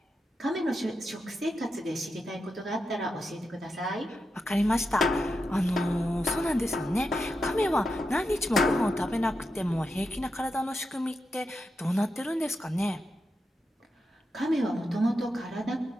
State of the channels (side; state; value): both; normal; correlation 0.87